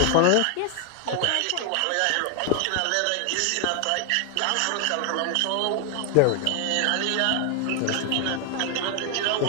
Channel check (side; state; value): both; different; correlation 0.00